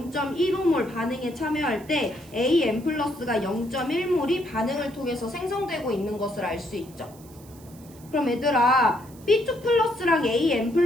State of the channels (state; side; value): noise; right; hiss, 24 dB below the sound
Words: 반응에 참여할 때 AN 플러스가 0.1몰이 반응을 통해서 생성되고 있는 것을 알 수 있죠. 그럼 얘들아, B2 플러스랑 AN